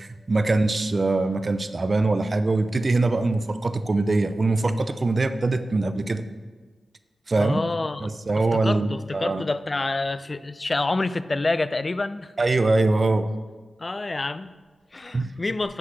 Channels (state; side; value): normal; both; correlation 0.95